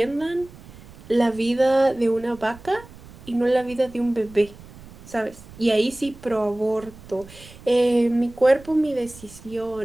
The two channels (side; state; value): right; noise; rumble, 19 dB below the sound